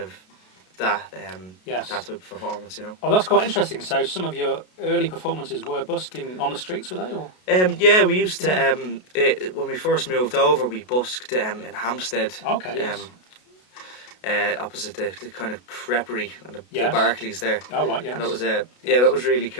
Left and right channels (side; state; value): right; late; 33 ms